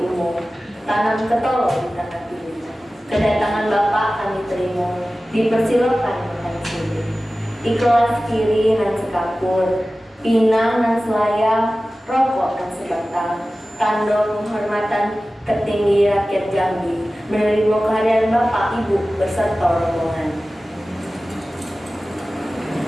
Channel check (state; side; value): normal; both; correlation 0.96